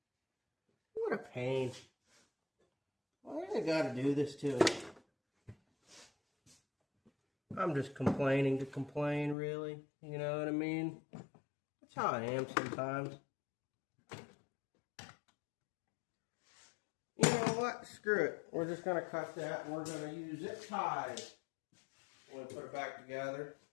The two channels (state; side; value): drops out; right; at 9.3 s